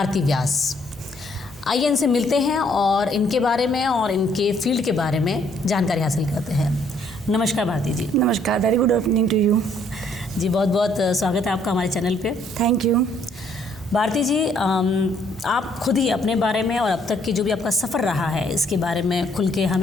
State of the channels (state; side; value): normal; both; correlation 0.66